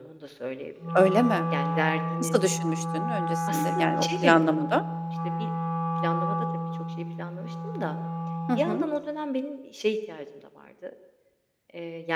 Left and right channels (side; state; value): both; identical; correlation 1.00